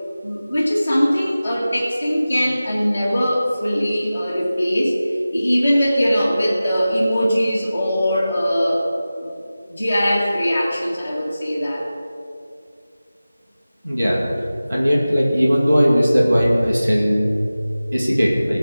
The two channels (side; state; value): both; inverted; correlation -0.96